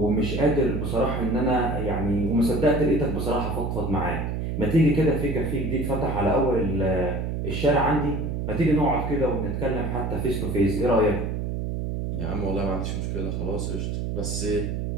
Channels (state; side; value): noise; right; hum, 2 dB below the sound